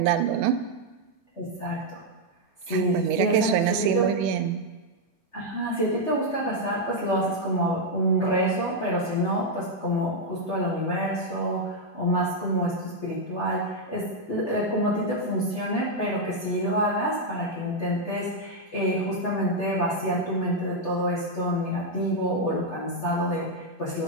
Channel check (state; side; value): normal; both; correlation -0.01